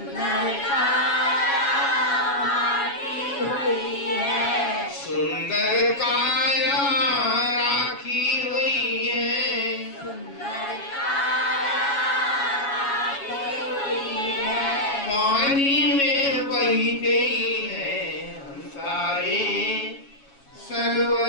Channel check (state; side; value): late; right; 7.2 ms